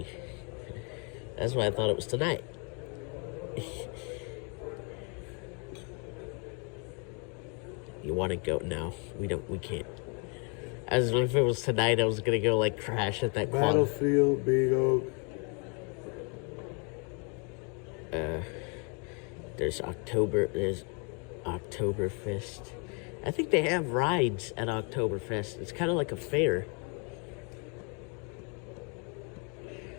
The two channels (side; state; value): right; quieter; 35.6 dB